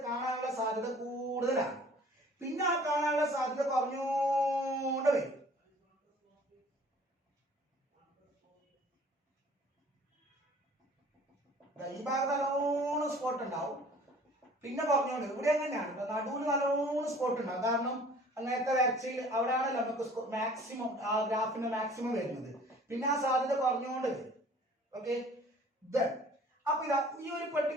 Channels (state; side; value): normal; both; correlation 0.51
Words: കാണാനുള്ള സാധ്യത കൂടുതലാണ്. പിന്നെ ആ കാണാനുള്ള സാധ്യത കുറഞ്ഞോണ്ട് വരും. ഈ ഭാഗത്ത് നല്ലോണം സ്പോട്ട് ഉണ്ടാവും, പിന്നെ കുറഞ്ഞോണ്ട്. ഇവിടെ എങ്ങനെയാണ് നടുവിൽ നല്ലോണം സ്പോട്ട് ഉണ്ടാവും. കാരണം അങ്ങനത്തെ വരച്ചയിൽ അവിടെയാണല്ലോ നമുക്ക് മാക്സിമം ആ ഗ്രാഫിന്റെ മാക്സിമം വരുന്നത്. പിന്നെ ആ സാധ്യത കുറഞ്ഞുകൊണ്ട് വരും. ഓക്കെ, അപ്പൊ ഇതാ ഈ ഒരു